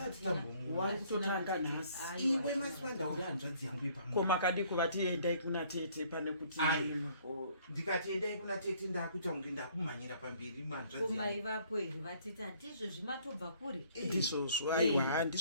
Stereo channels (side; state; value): both; inverted; correlation -0.61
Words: tambomona. Wakutotanga nhasi. Iwe Masivanda uri hanzvadzi yangu yepamwe. Koma kadi kuvati endai kuna tete pane kuti ndikati endai kuna tete ndakuita kunge ndakumhanyira pamberi mwanzvadzi. Koma ivapo here vatete handizvo zvimatobva kuri. Ndisosvo aiwa